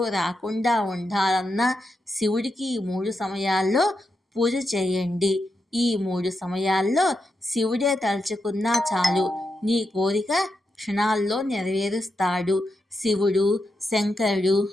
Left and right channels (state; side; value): normal; both; correlation 0.86